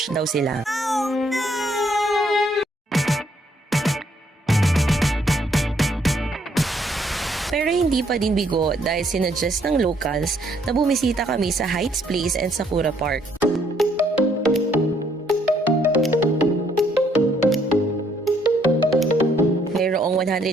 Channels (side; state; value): both; normal; correlation 0.69